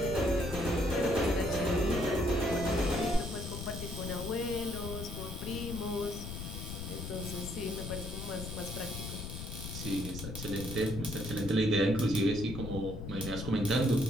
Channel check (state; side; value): noise; left; rumble, 7 dB below the sound